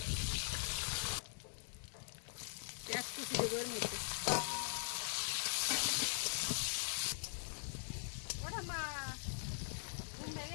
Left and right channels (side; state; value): right; silent; digital silence